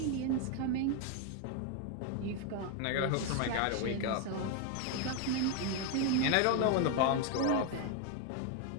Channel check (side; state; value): both; different; correlation 0.01